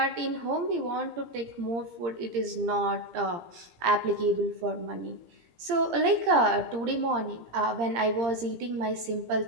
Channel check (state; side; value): late; left; 17 ms